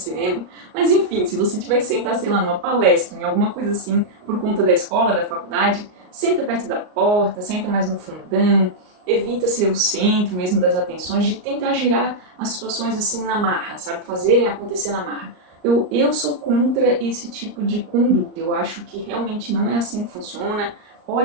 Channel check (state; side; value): late; left; 38 ms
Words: Mas enfim, se você tiver que sentar, sei lá, numa palestra, em alguma coisa assim, por conta da escola, da faculdade, senta perto da porta, senta mais no fundão, evita ser o centro mesmo das atenções, de tentar girar as situações assim na marra, sabe? Fazerem acontecer na marra. Eu sou contra esse tipo de conduta. Eu acho que realmente não é assim que funciona.